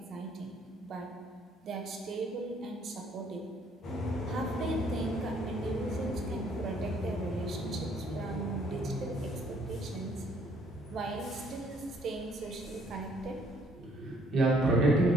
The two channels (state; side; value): normal; both; correlation 0.64